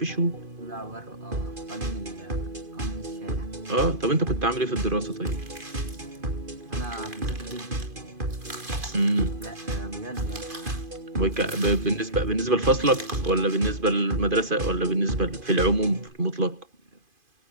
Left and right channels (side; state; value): left; late; 2.5 ms